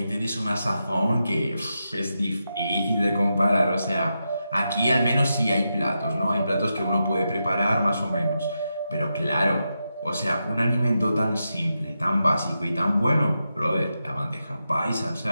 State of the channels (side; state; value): both; inverted; correlation -0.87